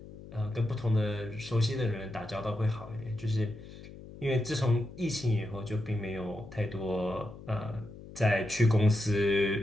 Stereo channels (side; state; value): left; noise; hum, 16 dB below the sound